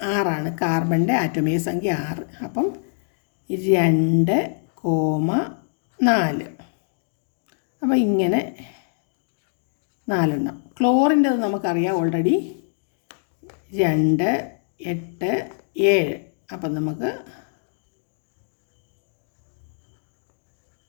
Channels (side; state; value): right; silent; digital silence